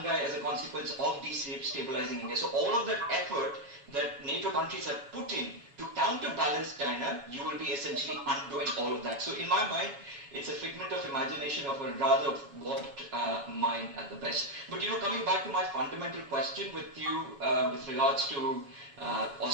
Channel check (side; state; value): left; late; 7.1 ms